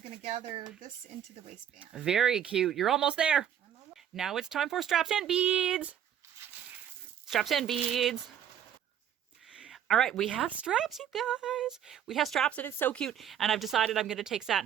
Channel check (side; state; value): left; quieter; 9.8 dB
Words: to gather this into the waistband. Very cute. You're almost there. I'm almost... Now it's time for straps and beads. Straps and beads. All right, we have straps, you guys. We have straps, and it's so cute. And I've decided I'm going to take